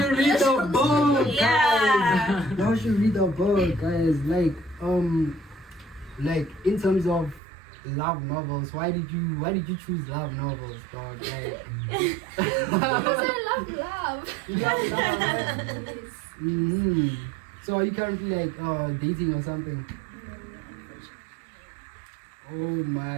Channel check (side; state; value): left; drops out; at 7.4 s